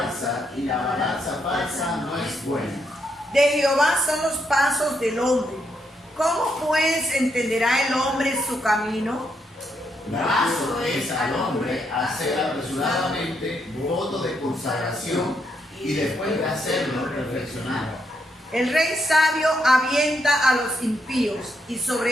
y la balanza falsa no es buena. De Jehová son los pasos del hombre. ¿Cómo pues entenderá el hombre su camino? Graso es al hombre hacer apresuradamente voto de consagración, y después de hacerlo reflexionar. El rey sabio avienta a los impíos, y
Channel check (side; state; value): both; normal; correlation 0.78